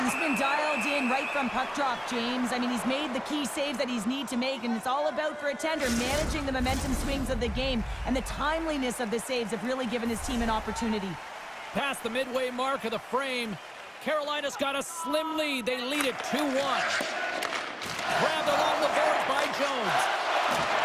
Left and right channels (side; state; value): both; identical; correlation 1.00